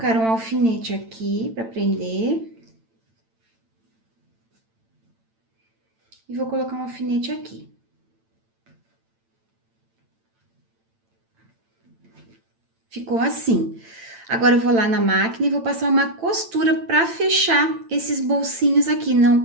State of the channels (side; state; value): left; late; 8.9 ms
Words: um alfinete aqui para prender. E vou colocar um alfinete aqui. Ficou assim. Agora, eu vou lá na máquina e vou passar uma costura para fechar esses bolsinhos aqui, não,